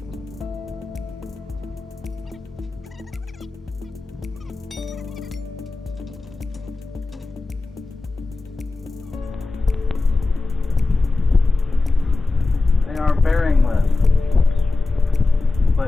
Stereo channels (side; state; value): right; quieter; 3.5 dB